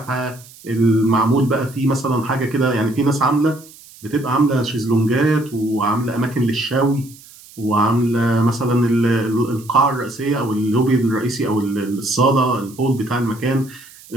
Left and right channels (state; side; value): noise; right; hiss, 22 dB below the sound